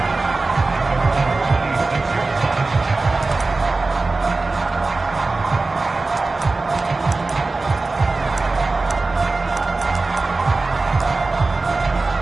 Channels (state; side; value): quieter; left; 3.5 dB